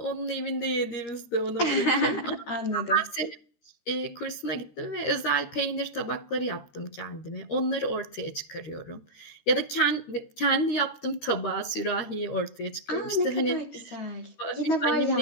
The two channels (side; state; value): right; late; 13 ms